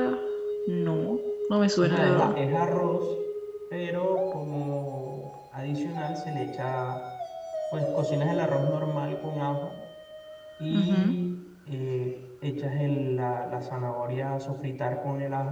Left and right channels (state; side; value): identical; both; correlation 1.00